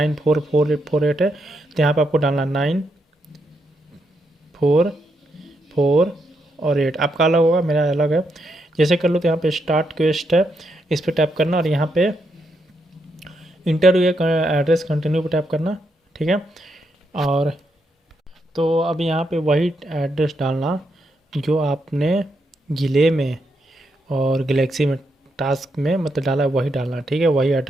है, तो यहाँ पे आपको डालना 944 और 8। आपका अलग होगा, मेरा अलग है। जैसे कर लो तो यहाँ पे स्टार्ट क्वेस्ट है, इस पर टैप करना और यहाँ पे इंटरव्यू एड्रेस कंटिन्यू पे टैप करना, ठीक है। और तो अब यहाँ पे वही एड्रेस डालना जो आपने जिले में और गैलेक्सी में टास्क में मतलब डाला है, वही डालना, ठीक है। वही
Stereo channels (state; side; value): normal; both; correlation 0.80